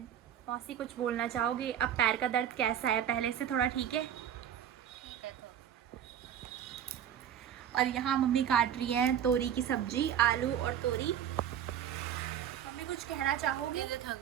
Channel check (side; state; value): left; quieter; 9.7 dB